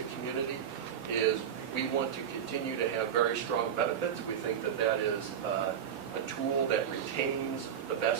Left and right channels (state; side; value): quieter; left; 8.7 dB